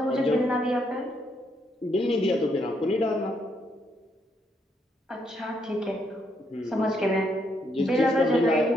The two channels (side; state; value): both; normal; correlation 0.75